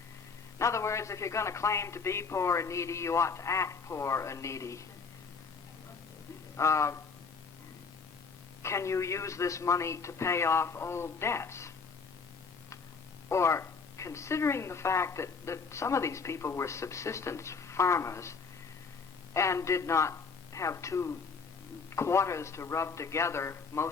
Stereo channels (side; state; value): right; quieter; 5.1 dB